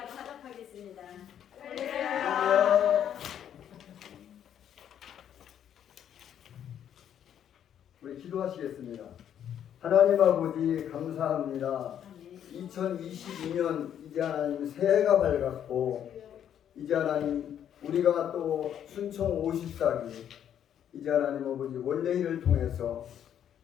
화답하겠습니다. 우리 기도하시겠습니다. 하나님 아버지 감사합니다. 2022년 이제 하나님 새해가 밝았고 이제 하나님 우리가 또 순총 54기 이제 하나님 아버지 원래일을 통해서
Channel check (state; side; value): quieter; right; 9.7 dB